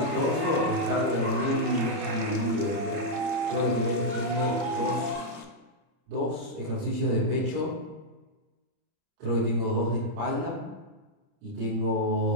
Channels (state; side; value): late; left; 30 ms